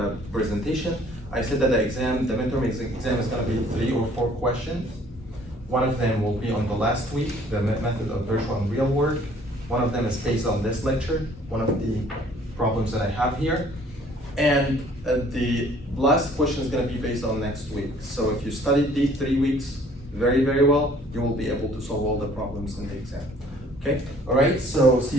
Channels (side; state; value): both; normal; correlation 0.57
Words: presentation. I said that the midterm exam is gonna be 3 or 4 questions. One of them will be on the last week, the method of virtual and real work. One of them is based on this lecture, one of the problems that I have here. And the last question is gonna be based on next week. So if you studied these 3 weeks very, very well, you will be able to solve all the problems in the exam. Okay, all right, so see